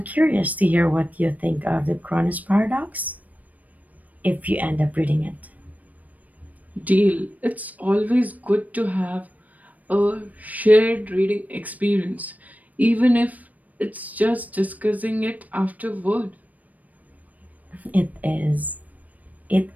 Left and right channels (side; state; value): left; late; 0.075 ms